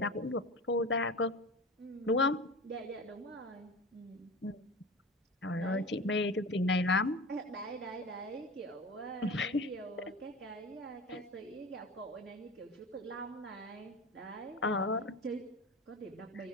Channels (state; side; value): normal; both; correlation 0.32